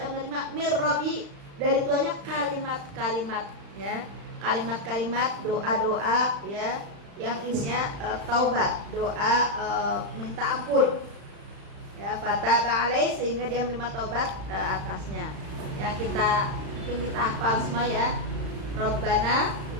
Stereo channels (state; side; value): late; left; 35 ms